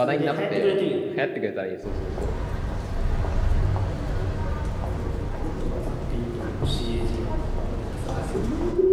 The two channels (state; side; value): identical; both; correlation 1.00